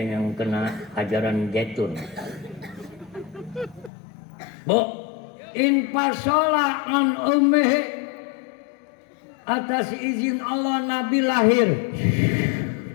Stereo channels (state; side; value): drops out; right; at 3.9 s